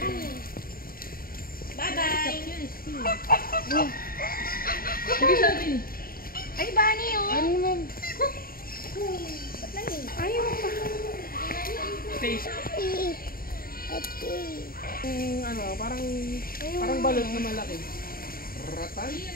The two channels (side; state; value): right; late; 0.43 ms